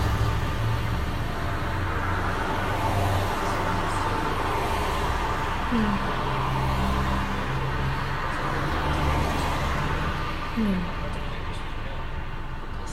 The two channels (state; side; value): identical; both; correlation 1.00